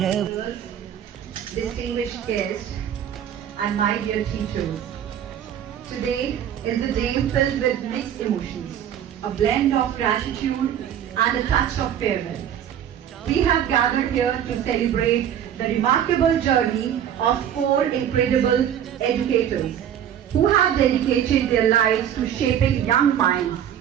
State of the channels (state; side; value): quieter; left; 9.8 dB